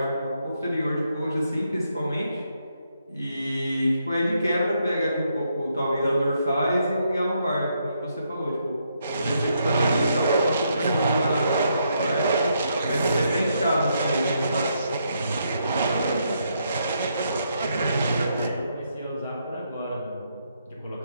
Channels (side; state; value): both; inverted; correlation -0.77